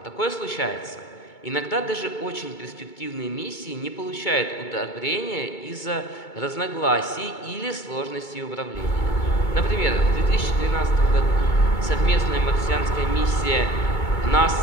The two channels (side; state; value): right; late; 2.2 ms